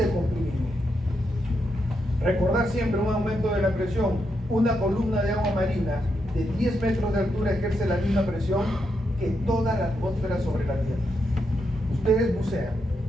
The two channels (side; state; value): both; normal; correlation 0.82